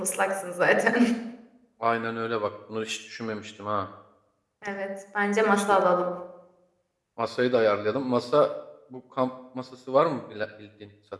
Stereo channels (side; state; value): both; identical; correlation 1.00